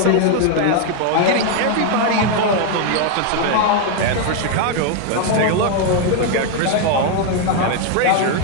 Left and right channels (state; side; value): different; both; correlation 0.01